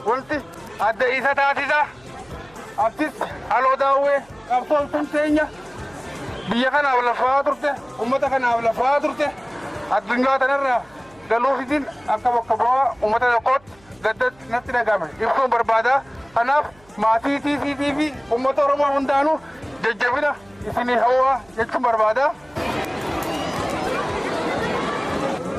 ولتي أدى إيسا تاتيزا أبتس ألو داوي أبطل تنتينيا بيا كان أولا فاترته أمتا كان أولا فاترته الدنيا تنرى قالوا في دين أكا وكبوا أمتا يقود قدت نتنا قامل يبقون بربادا أناف ما في أمتا رمى هندانو ججبنا إسني هوا يكتم بربادا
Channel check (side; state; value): right; noise; hum, 28 dB below the sound